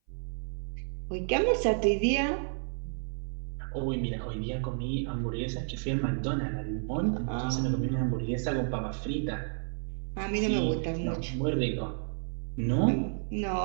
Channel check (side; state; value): left; silent; 57 dB below the other